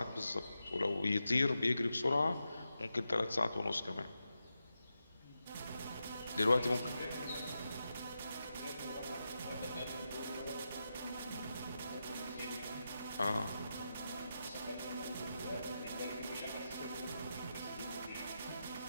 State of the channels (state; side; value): inverted; both; correlation -0.88